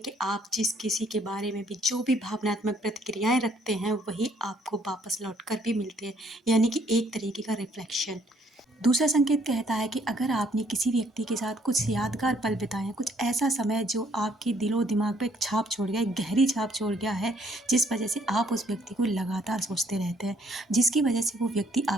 आप जिस किसी के बारे में भी जो भी भावनात्मक प्रतिक्रियाएं रखते हैं, वही आपको वापस लौट कर भी मिलते हैं। यानी कि एक तरीके का रिफ्लेक्शन। दूसरा संकेत कहता है कि अगर आपने किसी व्यक्ति के साथ कुछ यादगार पल बिताए हैं, कुछ ऐसा समय जो आपके दिलो दिमाग पे एक छाप छोड़ गया, एक गहरी छाप छोड़ गया है, जिस वजह से आप उस व्यक्ति को लगातार सोचते रहते हैं, जिसकी वजह से वो व्यक्ति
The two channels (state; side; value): normal; both; correlation 0.66